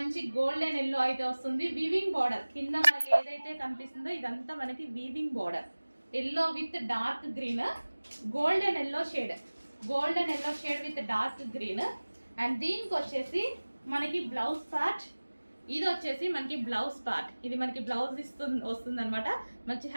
గోల్డెన్ ఎల్లో అయితే వస్తుంది. వీవింగ్ బార్డర్ కింద మనకి ఏదైతే కనిపిస్తుందో ఇదంతా మనకి weaving border. Yellow with dark green, golden yellow shade with dark green. And దీనికి వచ్చేసి మనకి బ్లౌజ్ పార్ట్, ఇది వచ్చేసి మనకి బ్లౌజ్ పార్ట్. ఇది మనకి బ్లౌజ్ వస్తుంది అనమాట. మంచి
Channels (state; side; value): inverted; both; correlation -1.00